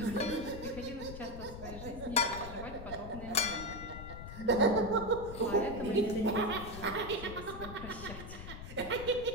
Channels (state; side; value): noise; left; rumble, 10 dB below the sound